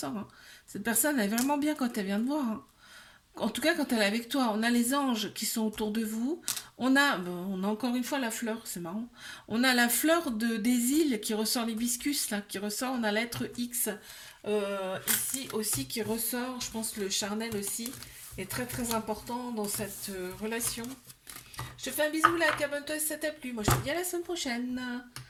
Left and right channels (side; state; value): both; identical; correlation 1.00